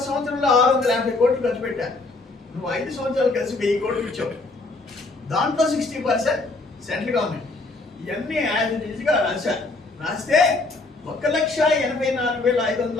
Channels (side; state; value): right; quieter; 3.3 dB